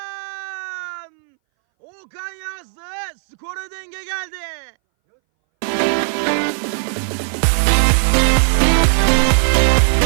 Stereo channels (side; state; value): left; silent; 63 dB below the other